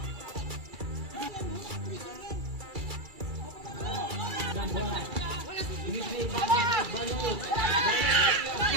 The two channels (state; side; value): late; left; 2.3 ms